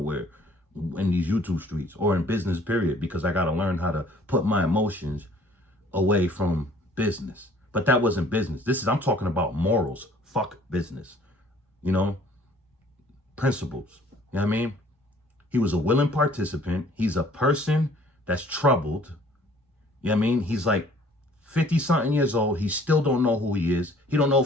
in these YouTube streets or in business, period, because I got to learn how to put my emotions away from business. But that wasn't business. I'm talking about morals. Fuck business. You know, principles. You know what I mean? He was a willing participant. He's a person that's troubled. You know what I mean? He's like 50-something years old. He still don't know who he is. He don't know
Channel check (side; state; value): both; normal; correlation 0.56